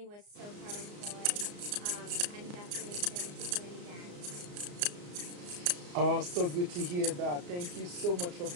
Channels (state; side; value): late; left; 34 ms